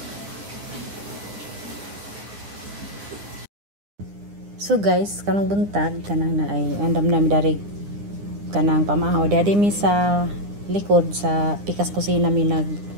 So guys, kanang buntag kanang na ay andam na mi dari kanang pamahaw dadi mi sa likod sa pikas kusina mi nag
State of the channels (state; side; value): late; left; 9.9 ms